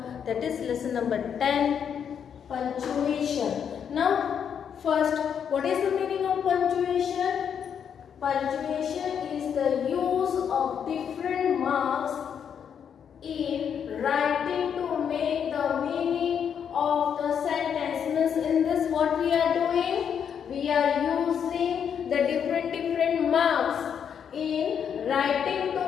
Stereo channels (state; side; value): quieter; right; 7.9 dB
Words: that is lesson number 10, punctuation. Now, first, what is the meaning of punctuation? Punctuation is the use of different marks in writing to make the meaning of the sentence. Means in this what we are doing? We are using the different marks in writing